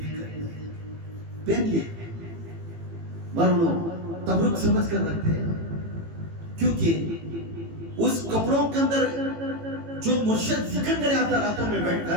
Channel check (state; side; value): late; left; 18 ms